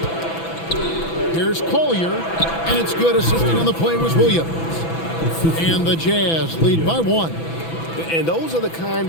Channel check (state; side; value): late; right; 6.0 ms